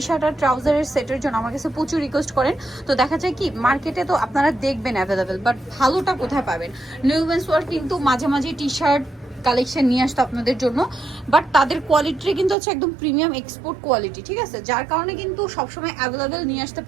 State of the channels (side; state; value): left; drops out; at 12.6 s